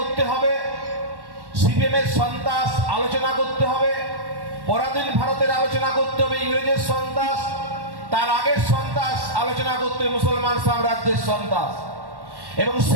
হবে, সিপিএমের সন্ত্রাস আলোচনা করতে হবে, পরাধীন ভারতের আলোচনা করতে হবে, ইংরেজের সন্ত্রাস, তার আগের সন্ত্রাস আলোচনা করতে হবে, মুসলমান সাম্রাজ্যের সন্ত্রাস। এবং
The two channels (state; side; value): late; left; 1.1 ms